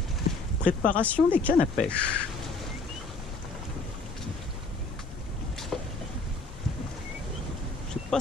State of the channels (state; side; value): quieter; right; 3.5 dB